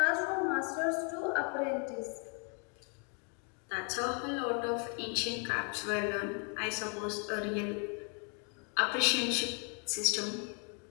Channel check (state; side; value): quieter; right; 38.7 dB